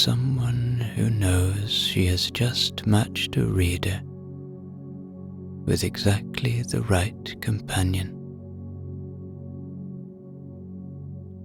who knows she has just matched a reader with exactly the right companion.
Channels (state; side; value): identical; both; correlation 1.00